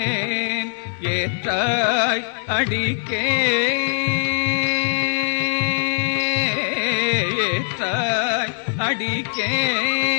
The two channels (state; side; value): silent; right; 65 dB below the other